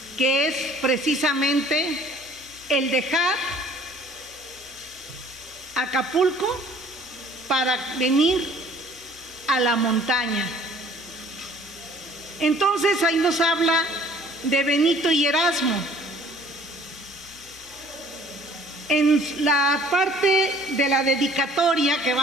que es precisamente el dejar Acapulco para venir a la montaña. Entonces ahí nos habla de Benito y Erasmo. En la parte de la dedicatoria que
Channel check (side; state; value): both; normal; correlation 0.54